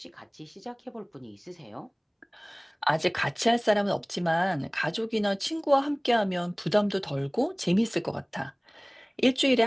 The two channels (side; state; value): both; identical; correlation 1.00